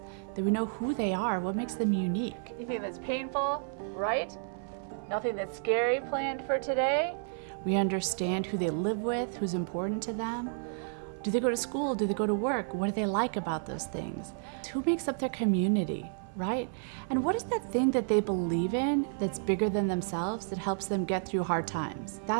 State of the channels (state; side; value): silent; left; 57 dB below the other